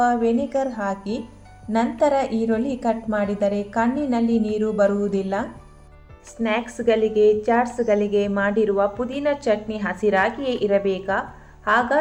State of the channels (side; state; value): both; identical; correlation 1.00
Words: ವೆನಿಗರ್ ಹಾಕಿ ನಂತರ ಈರುಳ್ಳಿ ಕಟ್ ಮಾಡಿದರೆ ಕಣ್ಣಿನಲ್ಲಿ ನೀರು ಬರುವುದಿಲ್ಲ. ಸ್ನ್ಯಾಕ್ಸ್ಗಳಿಗೆ ಚಾಟ್ಸ್ಗಳಿಗೆ ಮಾಡಿರುವ ಪುದೀನ ಚಟ್ನಿ ಹಸಿರಾಗಿಯೇ ಇರಬೇಕಾ?